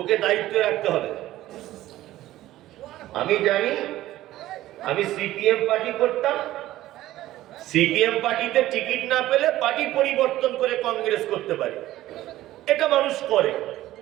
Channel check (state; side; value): quieter; left; 15.0 dB